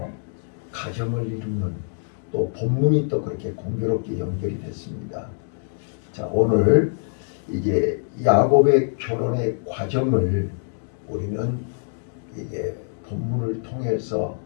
가정을 이루는 또 본문이 또 그렇게 공교롭게 연결이 됐습니다. 자, 오늘 이제 야곱의 결혼의 과정을 우리는 이게 본문을 통해서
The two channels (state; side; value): silent; right; digital silence